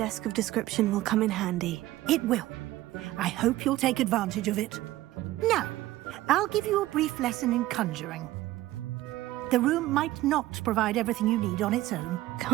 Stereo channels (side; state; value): left; quieter; 16.2 dB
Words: of description will come in handy. It will. I hope you'll take advantage of it. Now, I'll give you a brief lesson in conjuring. The room might not provide everything you need on its own.